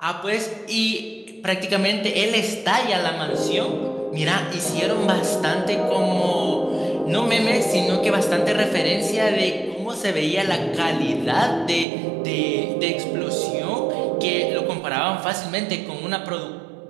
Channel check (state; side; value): drops out; left; at 11.9 s